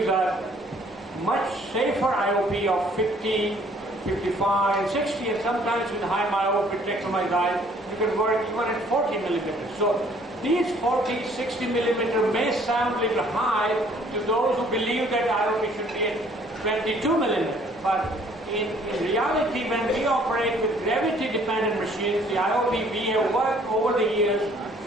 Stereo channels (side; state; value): both; normal; correlation 0.59